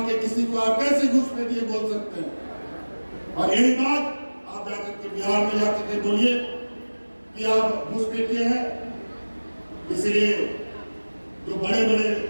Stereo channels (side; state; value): both; inverted; correlation -1.00